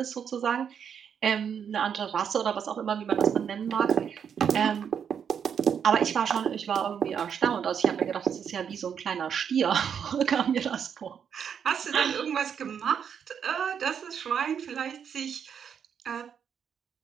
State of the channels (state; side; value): quieter; left; 7.7 dB